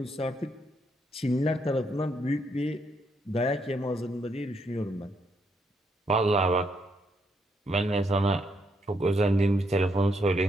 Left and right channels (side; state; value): both; normal; correlation 0.76